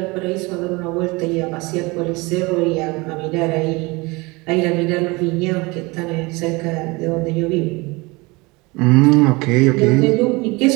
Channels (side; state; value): left; quieter; 24.7 dB